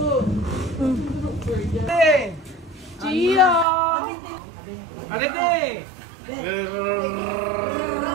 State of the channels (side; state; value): left; drops out; at 3.7 s